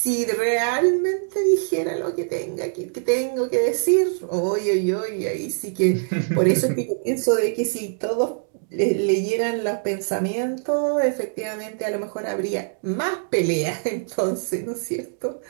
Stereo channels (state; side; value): silent; left; digital silence